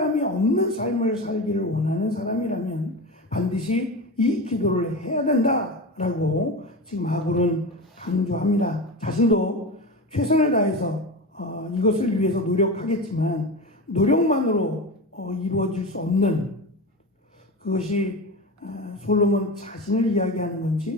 없는 삶을 살기를 원하는 사람이라면 반드시 이 기도를 해야 된다라고 지금 아굴은 강조합니다. 자신도 최선을 다해서 이것을 위해서 노력하겠지만 노력만으로 이루어질 수 없는 그것이 솔로몬 자신을 이야기하는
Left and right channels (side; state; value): both; normal; correlation 0.25